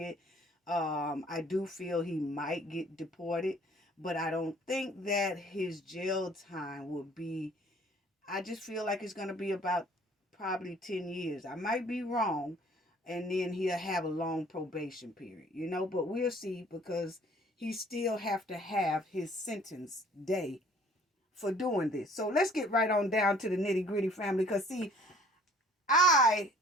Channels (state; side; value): normal; both; correlation 0.55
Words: I do feel he might get deported, but I don't think that his jail time will be, I just feel like it's going to be about probably 10 years. I might be wrong. And then he'll have a long probation period, you know, but we'll see, because he still have to have his sentence day for doing this. So let's get right on down to the nitty gritty, family, because see, I